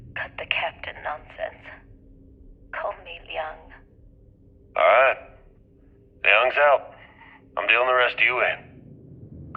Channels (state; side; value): identical; both; correlation 1.00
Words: cut the captain nonsense. Call me Liang. Alright. Young's out. I'm dealing the rest of you in.